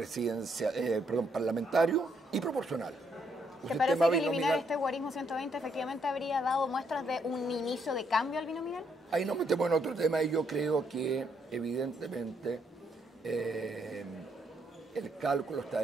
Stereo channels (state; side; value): normal; both; correlation 0.73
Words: parlamentario y proporcional. ¿Te parece que eliminar este guarismo 120 efectivamente habría dado muestras de un inicio de cambio al binominal? Ahí nos metemos en otro tema y yo creo que evidentemente el cálculo está